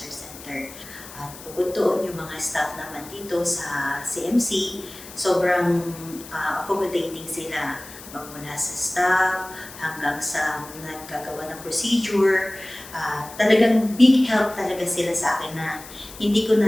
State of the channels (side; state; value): left; noise; hiss, 16 dB below the sound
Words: Center. At bukod doon, yung mga staff naman dito sa CMC, sobrang accommodating sila. Magmula sa staff hanggang sa naggagawa ng procedure. Talagang big help talaga sila sa akin na hindi ko